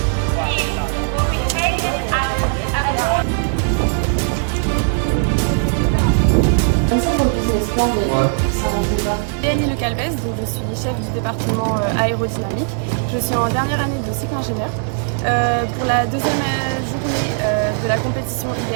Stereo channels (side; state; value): left; silent; 67 dB below the other